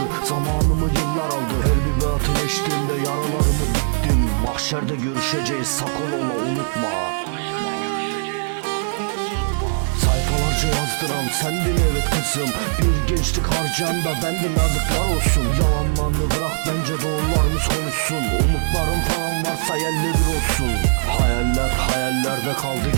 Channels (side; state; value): left; silent; 63 dB below the other